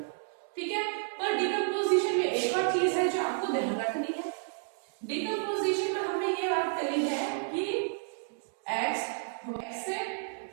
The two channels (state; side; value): silent; left; digital silence